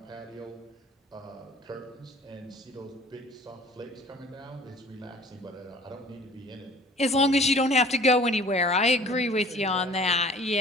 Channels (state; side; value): normal; both; correlation 0.49